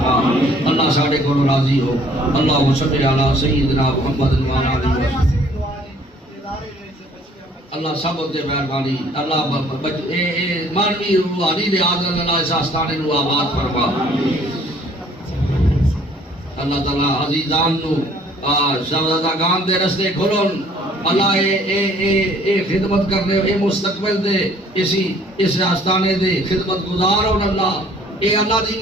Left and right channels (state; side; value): normal; both; correlation 0.58